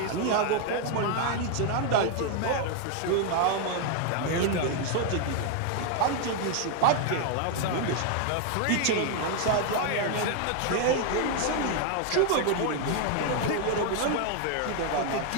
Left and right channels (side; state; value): both; different; correlation 0.00